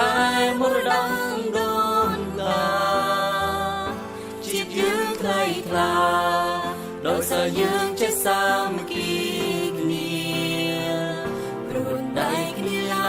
ែមរតកដូនតាជាតិយើងថ្លៃថ្លាដោយសារយើងចេះសាមគ្គីគ្នាព្រួនដៃគ្នាឡ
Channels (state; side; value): identical; both; correlation 1.00